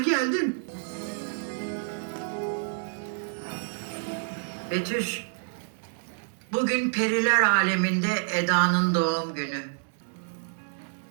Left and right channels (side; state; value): left; silent; digital silence